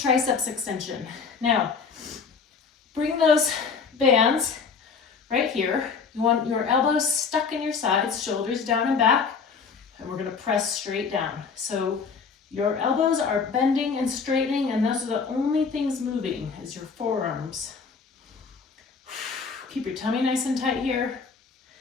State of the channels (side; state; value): right; quieter; 5.4 dB